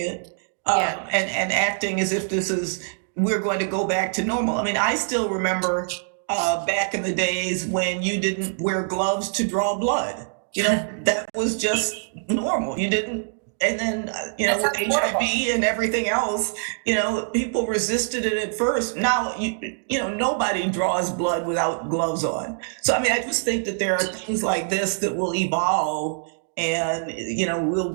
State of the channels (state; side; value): silent; left; digital silence